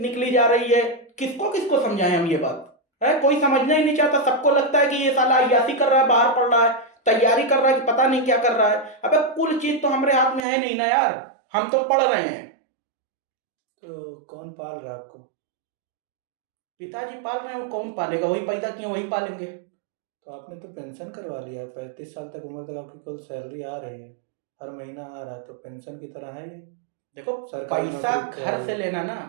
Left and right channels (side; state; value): left; drops out; at 10.4 s